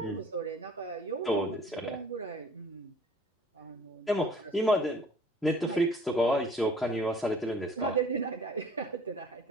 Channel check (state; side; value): normal; both; correlation 0.52